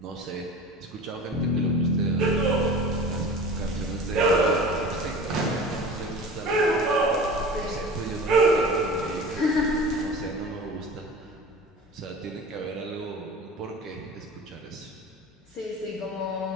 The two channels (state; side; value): normal; both; correlation 0.37